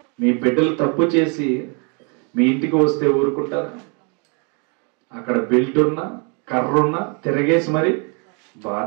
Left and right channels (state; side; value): quieter; left; 35.1 dB